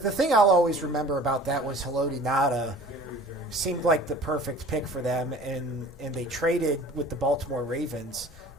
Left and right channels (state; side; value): normal; both; correlation 0.46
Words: thing I'll always remember about that was Haloti Ngata seemed like the perfect pick for them, and they traded with the Baltimore Ravens